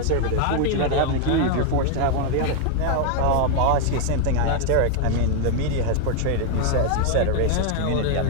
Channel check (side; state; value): both; different; correlation 0.00